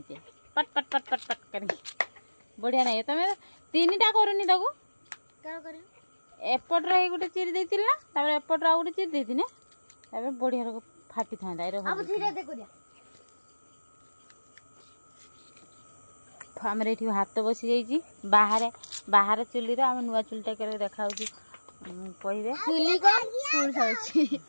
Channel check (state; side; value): inverted; both; correlation -1.00